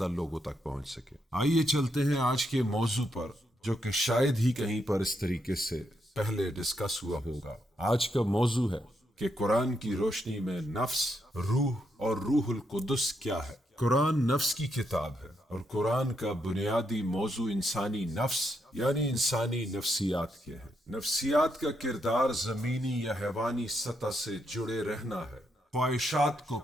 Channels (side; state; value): both; normal; correlation 0.79